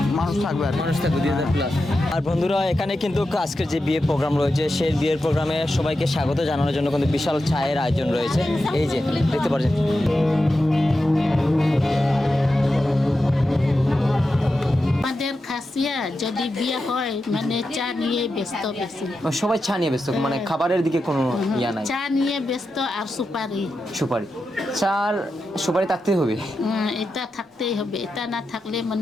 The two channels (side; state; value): both; normal; correlation 0.90